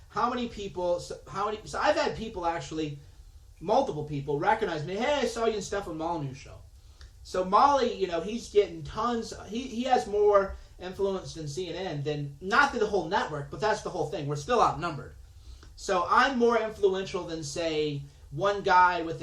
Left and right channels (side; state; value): both; identical; correlation 1.00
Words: How many people? So I've had people actually, multiple people recognize me. Hey, I saw you in Stefan Molyneux show. So Molly, he's getting tons. He has more influence than CNN. Than not the whole network, but that's the whole thing. We're still outnumbered. So I'm more influential than, say, one guy with